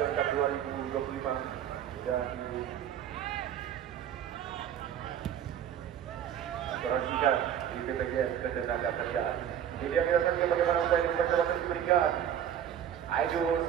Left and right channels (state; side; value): quieter; left; 9.7 dB